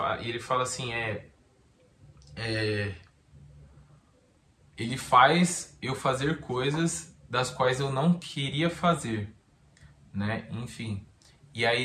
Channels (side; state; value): both; identical; correlation 1.00